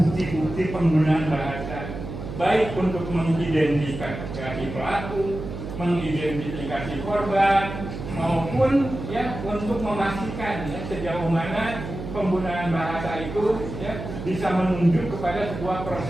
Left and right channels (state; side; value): noise; right; hum, 8 dB below the sound